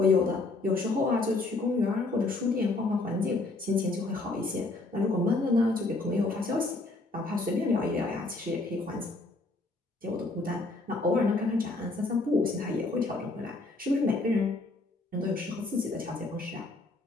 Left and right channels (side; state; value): right; quieter; 3.2 dB